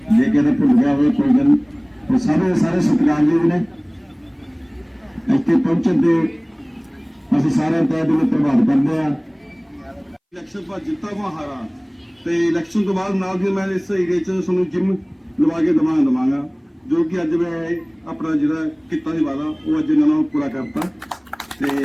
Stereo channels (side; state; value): both; identical; correlation 1.00